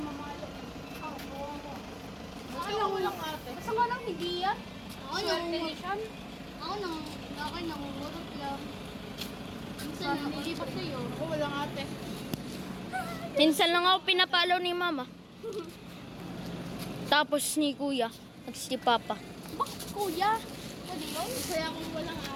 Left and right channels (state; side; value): identical; both; correlation 1.00